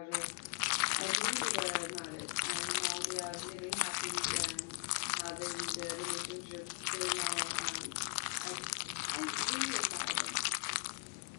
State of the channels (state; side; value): quieter; right; 38.2 dB